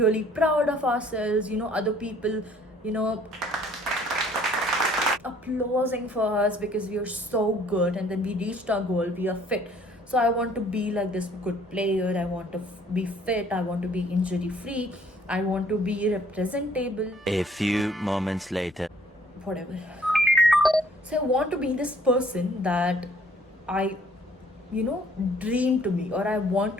proud of ourselves, other people, applauding for us because we are so good, and then we reached our goal, we are fit. So I want to be like this good player, I want to be fit, I want to be injury free, I want to be representable. A few moments later. Whatever. So I want to be this person that I dream to be, or I want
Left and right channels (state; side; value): normal; both; correlation 0.59